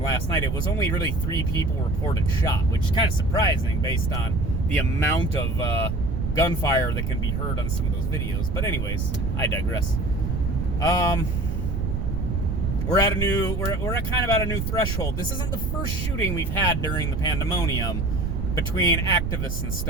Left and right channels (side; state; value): right; noise; rumble, 1 dB below the sound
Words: last night, it was only really 3 people reported shot, which is kind of surprising based on the amount of gunfire that can be heard on some of those videos. But anyways, I digress. We're at kind of at a new threshold. This isn't the first shooting we've had during the Pandemonium between activists and